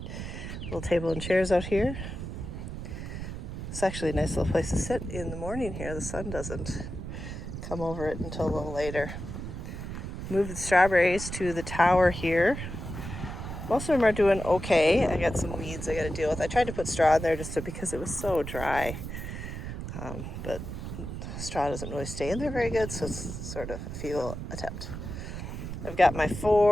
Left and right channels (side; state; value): right; noise; rumble, 7 dB below the sound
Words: little table and chairs out here. It's actually a nice little place to sit in the morning here. The sun doesn't come over it until a little later. Move the strawberries to the tower here. Most of them are doing okay. I got some weeds I got to deal with. I tried to put straw in there because it was so dry. But straw doesn't really stay in there very good, so it's sort of a futile attempt. I've got my